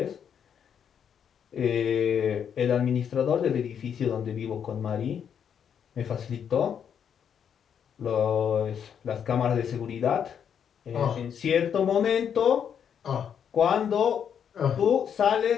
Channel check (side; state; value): right; quieter; 8.1 dB